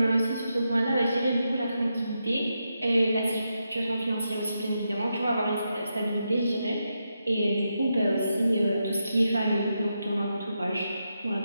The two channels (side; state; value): both; inverted; correlation -0.85